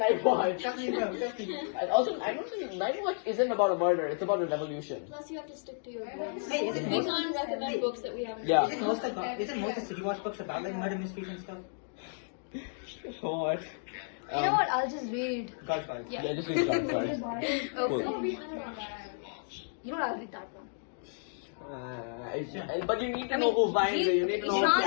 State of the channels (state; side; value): silent; right; digital silence